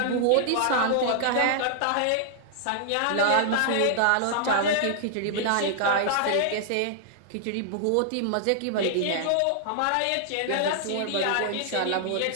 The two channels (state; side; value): different; both; correlation -0.01